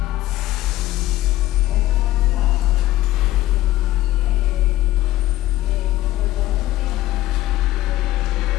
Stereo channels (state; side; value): quieter; right; 15.4 dB